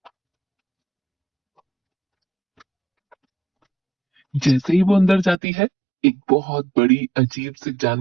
जैसे ही वो अंदर जाती है, एक बहुत बड़ी अजीब से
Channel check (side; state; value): left; drops out; at 5.4 s